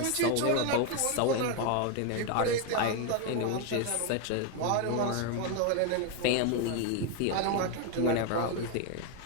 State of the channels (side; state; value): both; different; correlation 0.01